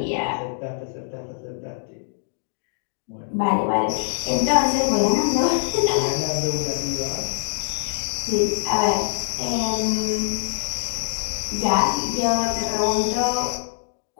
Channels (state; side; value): silent; right; digital silence